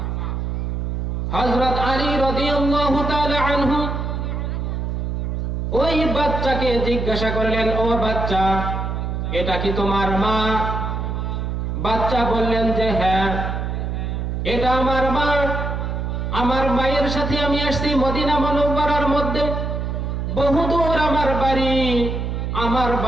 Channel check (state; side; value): noise; right; hum, 2 dB below the sound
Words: হযরত আলী রাদিয়াল্লাহু তাআলা আনহু ওই বাচ্চাকে জিজ্ঞাসা করলেন, ও বাচ্চা, এটা কি তোমার মা? বাচ্চা বললেন যে হ্যাঁ, এটা আমার মা। আমার মায়ের সাথে আমি আসছি মদিনা মুনাওয়ারার মধ্যে, বহুদূর আমার বাড়ি, আমার